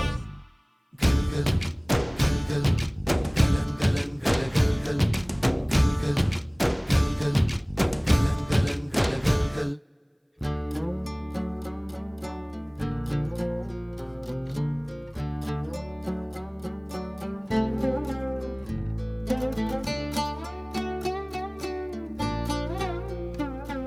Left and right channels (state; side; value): identical; both; correlation 1.00